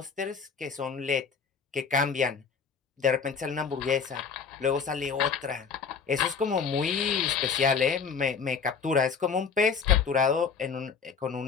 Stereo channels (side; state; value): right; quieter; 5.8 dB